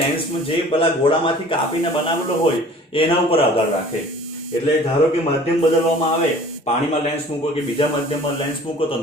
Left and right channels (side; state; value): both; normal; correlation 0.48